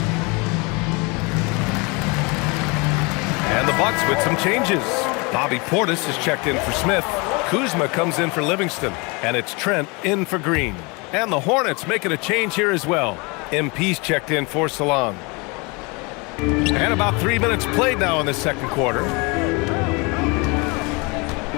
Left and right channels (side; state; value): right; quieter; 28.2 dB